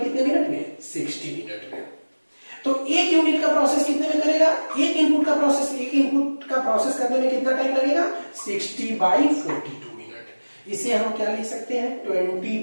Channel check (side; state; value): both; inverted; correlation -1.00